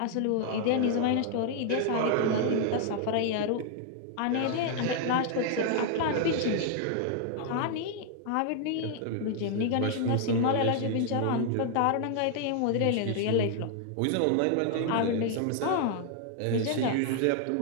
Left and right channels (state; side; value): different; both; correlation 0.00